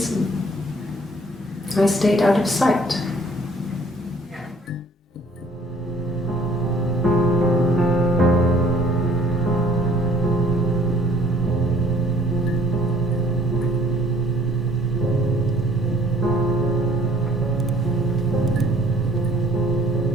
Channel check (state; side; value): normal; both; correlation 0.57